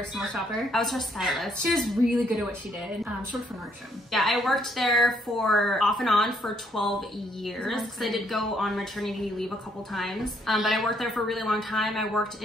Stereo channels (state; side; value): normal; both; correlation 0.70